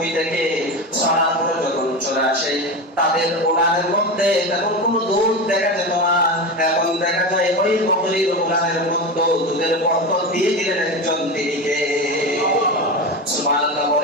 থেকে সরাসরি যখন চলে আসে, তাদের ওলানের মধ্যে তখন কোনো দুধ দেখা যেত না। এখন দেখা যায় ওই বকরির ওলানের মধ্যে দুধের বরকত দিয়ে দিলেন একজন, তিনি কে? সুবহানাল্লাহ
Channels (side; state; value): both; normal; correlation 0.22